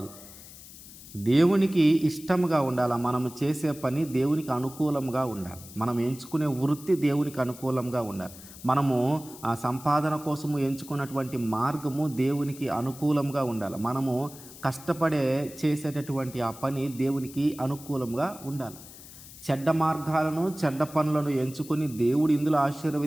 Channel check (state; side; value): noise; left; hiss, 17 dB below the sound